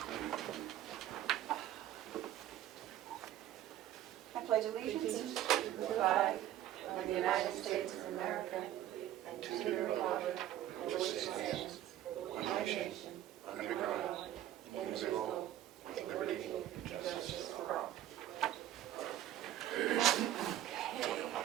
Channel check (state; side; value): quieter; left; 12.6 dB